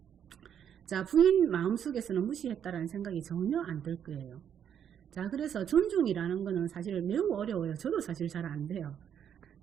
자, 부인 마음속에서는 무시했다라는 생각이 전혀 안 들 거예요. 자, 그래서 존중이라는 거는 사실 매우 어려워요. 저도 사실 잘 안 돼요.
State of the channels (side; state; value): left; quieter; 8.8 dB